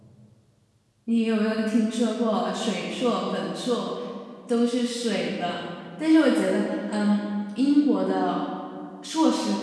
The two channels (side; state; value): both; identical; correlation 1.00